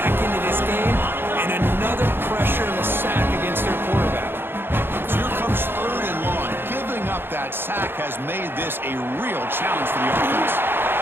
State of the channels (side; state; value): left; late; 0.10 ms